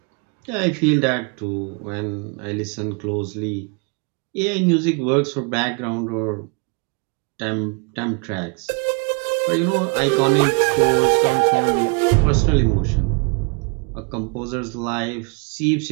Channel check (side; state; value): left; quieter; 34.0 dB